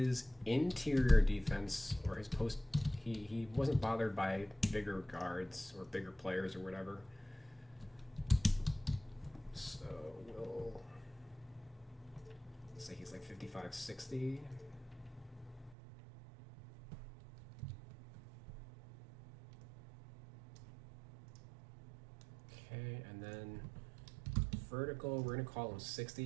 interior defense or his post. He wasn't bothered by bigger guards or bigger players or whatever. So we'll say he's like 55, 60. Okay, and then vertical, we're gonna call him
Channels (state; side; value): drops out; left; at 15.8 s